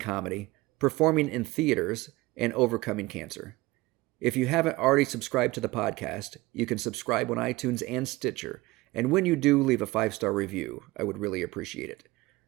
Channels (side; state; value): left; quieter; 20.4 dB